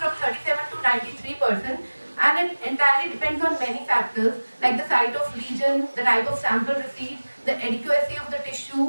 37 to 93%, and it entirely depends on many factors like the site of lesion, the type of sample received, the adequacy of the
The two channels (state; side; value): inverted; both; correlation -1.00